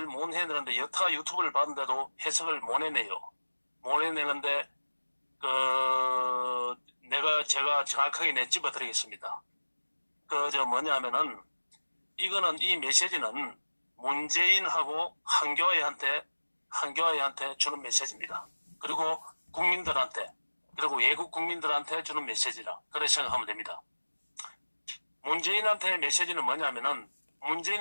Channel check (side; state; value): both; inverted; correlation -1.00